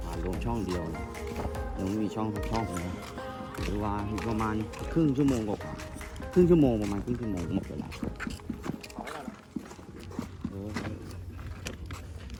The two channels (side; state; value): both; identical; correlation 1.00